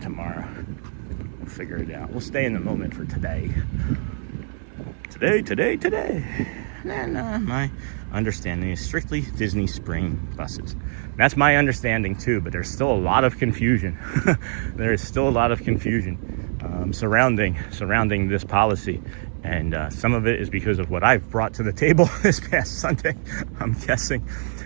We'll figure it out. We'll stay in the moment for today. Today. then my understanding is strictly Disney Spring buses. That's my understanding too, but there's still a lot of confusion. There is still a lot of confusion surrounding this policy. And some of it is because of what I've brought to the table this past Sunday, I'm guessing,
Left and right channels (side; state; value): left; silent; digital silence